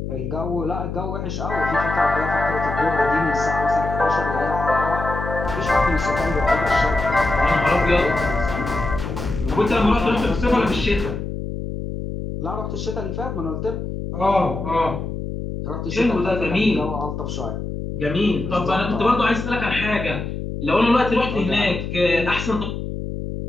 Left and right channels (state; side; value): noise; left; hum, 5 dB below the sound